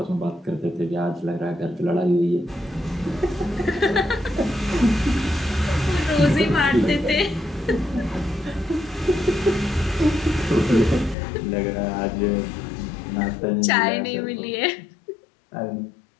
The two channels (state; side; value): drops out; right; at 11.2 s